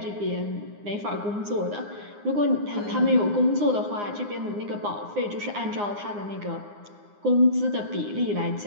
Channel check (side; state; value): left; late; 9.7 ms